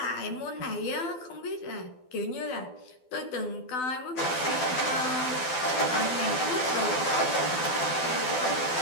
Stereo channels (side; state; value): right; late; 12 ms